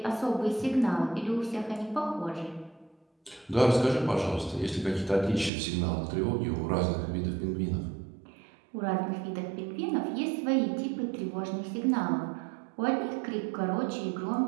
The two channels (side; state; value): left; drops out; at 5.5 s